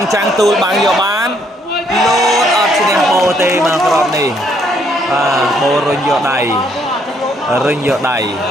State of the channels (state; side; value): normal; both; correlation 0.69